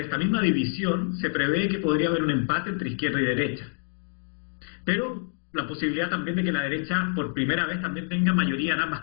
misma división, se prevé que podría haber un empate entre izquierda y derecha. Pero la posibilidad también de que la derecha por primera vez también tenga mayoría en ambas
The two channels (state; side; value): silent; right; 60 dB below the other